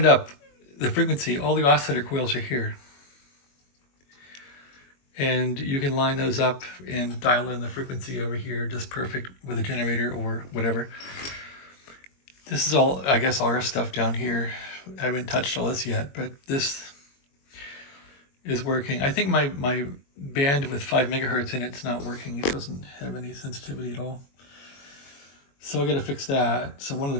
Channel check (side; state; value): right; late; 22 ms